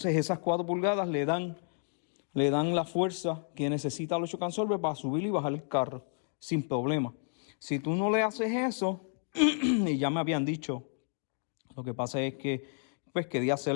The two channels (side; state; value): right; silent; 57 dB below the other